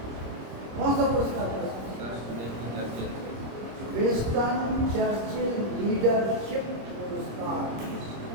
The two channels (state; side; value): late; left; 26 ms